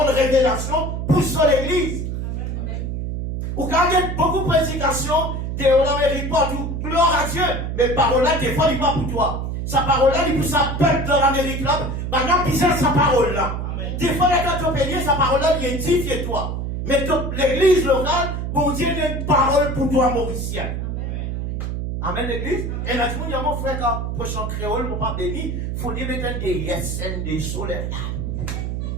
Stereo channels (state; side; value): noise; right; hum, 3 dB below the sound